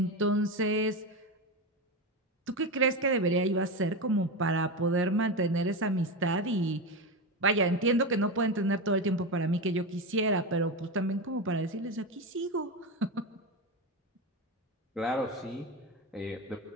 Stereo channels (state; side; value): normal; both; correlation 0.17